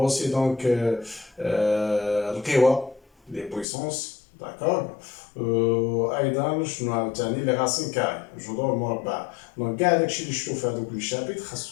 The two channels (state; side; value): drops out; right; at 3.7 s